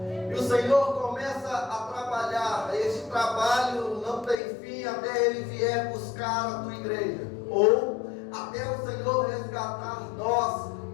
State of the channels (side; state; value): right; drops out; at 4.4 s